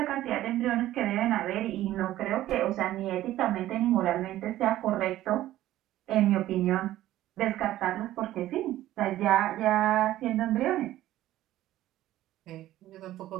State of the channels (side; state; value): left; quieter; 14.3 dB